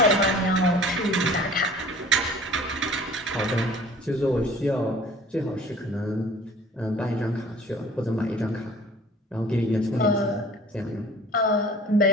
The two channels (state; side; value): normal; both; correlation 0.47